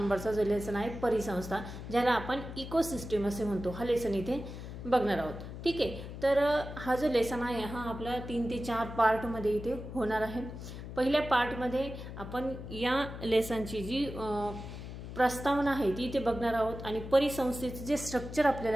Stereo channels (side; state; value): left; noise; hum, 10 dB below the sound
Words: जो लेसन आहे परिसंस्था, ज्याला आपण इकोसिस्टम असे म्हणतो, हा लेसन इथे बघणार आहोत। ठीक आहे, तर हा जो लेसन आहे हा आपला 3 ते 4 पार्ट मध्ये इथे होणार आहे। पहिल्या पार्ट मध्ये आपण या लेसनची जी प्रस्तावना आहे ती इथे बघणार आहोत आणि परिसंस्थेचे जे स्ट्रक्चर